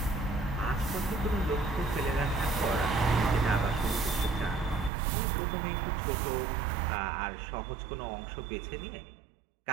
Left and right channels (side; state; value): left; drops out; at 4.9 s